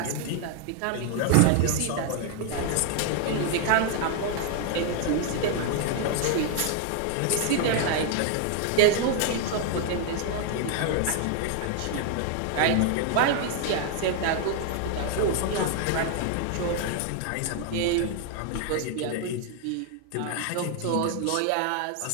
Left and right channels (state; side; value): different; both; correlation 0.00